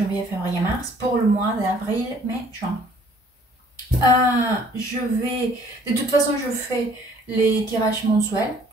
février, mars pour le mois d'avril, mai, juin. De toute façon, je fais les tirages mensuels,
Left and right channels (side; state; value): both; normal; correlation 0.58